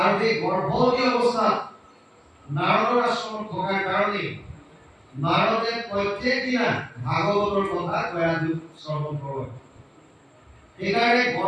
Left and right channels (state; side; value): identical; both; correlation 1.00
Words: সেই গৰ্ভৱতী অৱস্থাত নাৰদৰ আশ্ৰমত থকাৰ কাৰণে নাৰদে প্ৰত্যেক দিনা ভাগৱতৰ কথা কয়াধুক শ্ৰৱণ কৰে। সেইকাৰণে